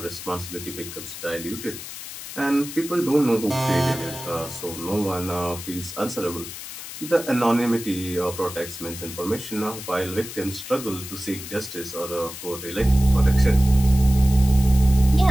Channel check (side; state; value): left; noise; hiss, 11 dB below the sound